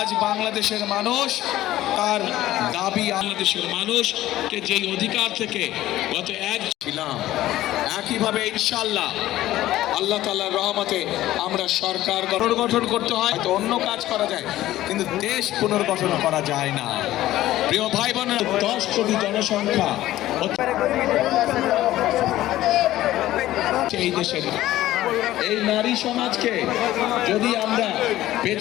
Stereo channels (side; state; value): right; quieter; 14.9 dB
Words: বাংলাদেশের মানুষ তার দাবি, বাংলাদেশের মানুষকে যেই অধিকার থেকে গত এক ছিলাম, একইভাবে ইনশাআল্লাহ আল্লাহ তাআলার রহমতে আমরা সরকার পুনর্গঠন করতে হয়, তো অন্য কাজ করা যায়, কিন্তু দেশ পুনর্গঠন করা যায় না। প্রিয় ভাই বোনেরা, 10 কোটি জনসংখ্যা এই দেশের এই নারী সমাজকে যদি আমরা